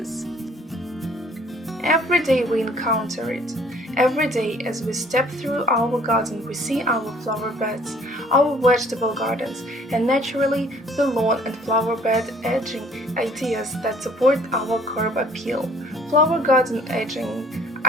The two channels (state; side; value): normal; both; correlation 0.57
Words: Every day we encounter it. Every day as we step through our garden we see our flower beds, our vegetable gardens, and naturally the lawn and flower bed edging ideas that support our curb appeal. Flower garden edging